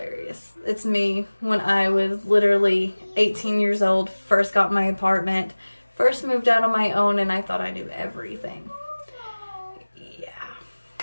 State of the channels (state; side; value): inverted; both; correlation -1.00